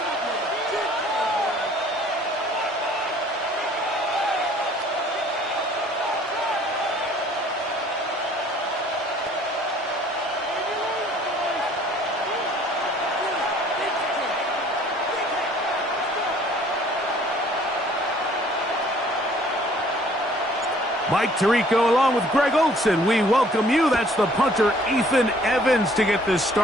Mike Tirico along with Greg Olson. We welcome you. That's the punter, Ethan Evans, to get this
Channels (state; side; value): normal; both; correlation 0.56